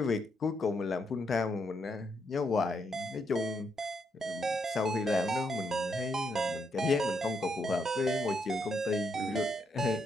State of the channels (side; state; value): both; normal; correlation 0.78